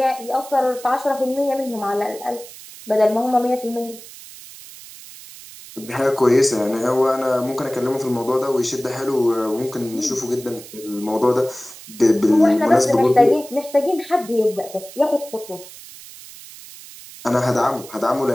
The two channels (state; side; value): noise; right; hiss, 17 dB below the sound